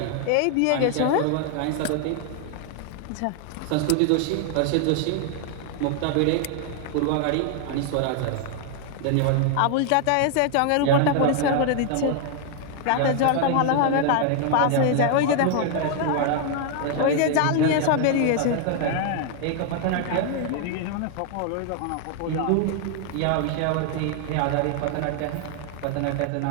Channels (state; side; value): different; both; correlation 0.00